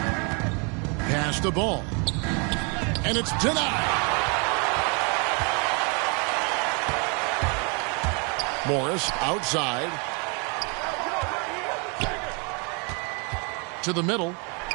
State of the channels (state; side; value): quieter; left; 34.5 dB